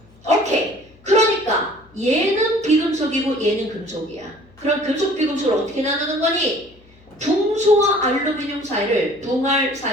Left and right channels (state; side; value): noise; left; hum, 27 dB below the sound